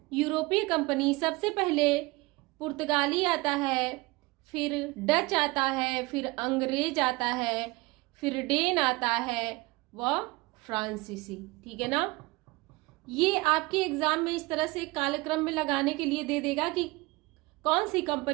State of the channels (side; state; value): left; quieter; 23.0 dB